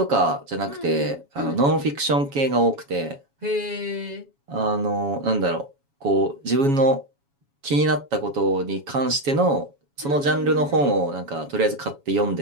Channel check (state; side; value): late; left; 7.2 ms